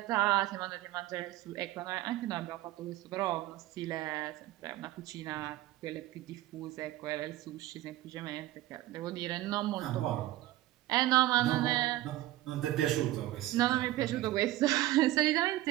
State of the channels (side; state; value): left; quieter; 16.0 dB